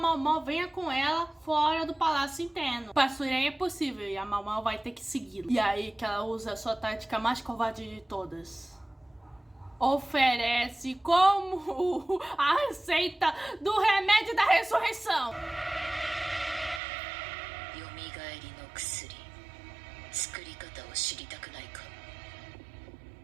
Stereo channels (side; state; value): left; drops out; at 16.8 s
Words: venha com ela fora do palácio interno. Para a Suiren é possível e a Mau vai ter que segui-la. E aí que ela usa a sua tática mais covarde de todas. Oferece como a receita do remédio da ressurreição.